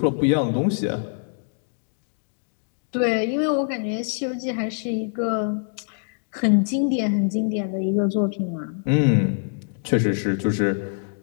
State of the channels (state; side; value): silent; right; digital silence